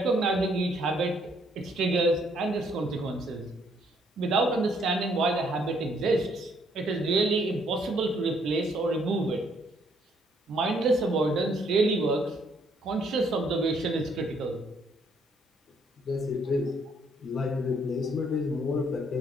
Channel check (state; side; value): normal; both; correlation 0.68